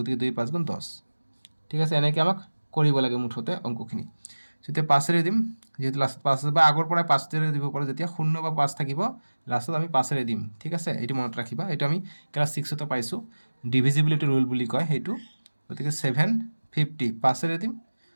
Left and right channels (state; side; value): inverted; both; correlation -1.00